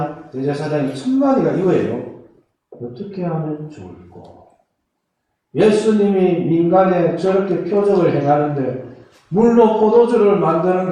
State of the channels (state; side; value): identical; both; correlation 1.00